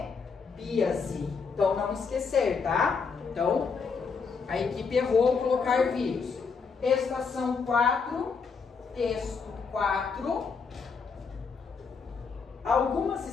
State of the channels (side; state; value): right; quieter; 5.3 dB